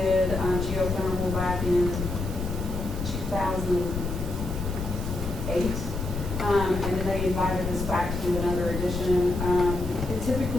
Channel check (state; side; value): noise; left; rumble, 5 dB below the sound